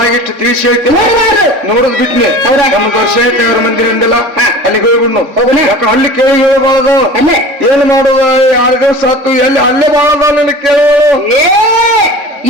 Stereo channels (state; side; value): late; left; 3.5 ms